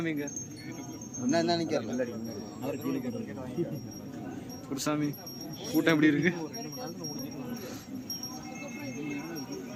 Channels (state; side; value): identical; both; correlation 1.00